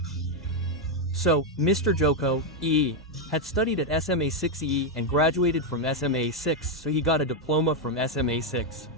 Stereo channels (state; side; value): normal; both; correlation 0.02